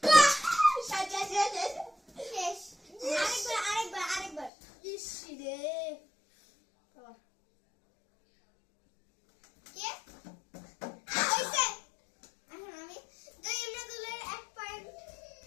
শেষ আরেকবার ইসি রে আবার কে হইছে এখন আমি তো ইমরাদুলের 1 পয়েন্ট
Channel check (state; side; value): drops out; right; at 4.5 s